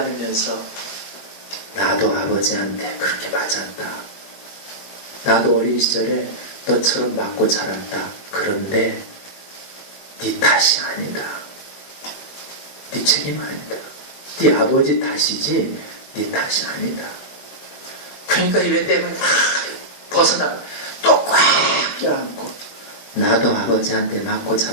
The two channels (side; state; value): right; late; 21 ms